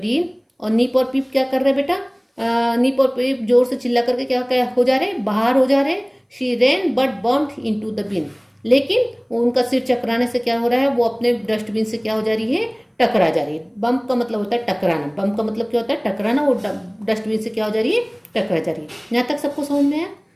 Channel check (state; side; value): identical; both; correlation 1.00